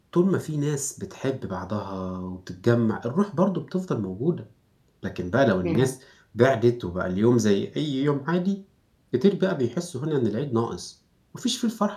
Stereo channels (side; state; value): both; identical; correlation 1.00